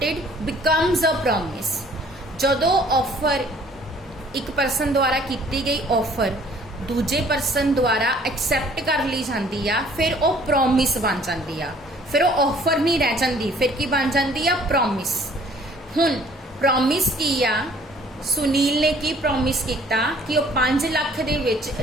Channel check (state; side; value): normal; both; correlation 0.56